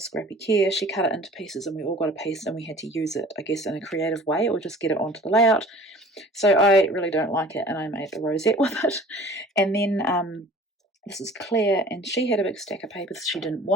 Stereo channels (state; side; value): normal; both; correlation 0.47